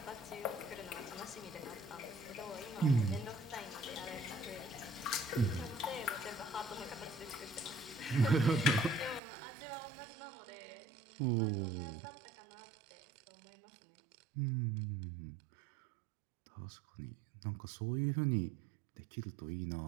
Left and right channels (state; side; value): drops out; left; at 9.2 s